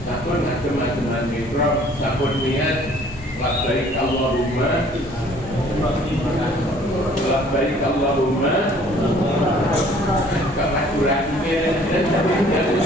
sapun macam-macam mikro, sapun niat, labbaik Allahumma, labbaik Allahumma, kemajurannya dan tadi dari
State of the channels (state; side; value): normal; both; correlation 0.56